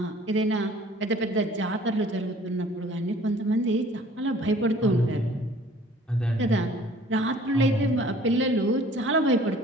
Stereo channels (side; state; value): both; normal; correlation 0.52